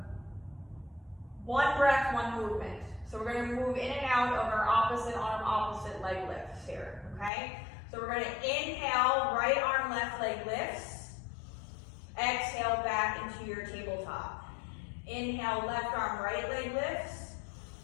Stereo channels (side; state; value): right; drops out; at 7.3 s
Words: one breath, one movement. So we're gonna move in and out of our opposite arm, opposite leg lifts here, okay? So we're gonna inhale, right arm, left leg lifts. Exhale back into your tabletop. Inhale, left arm, right leg lifts.